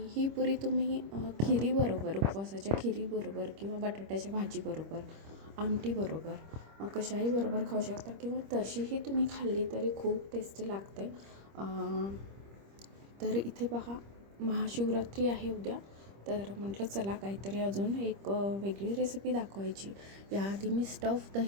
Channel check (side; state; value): left; late; 25 ms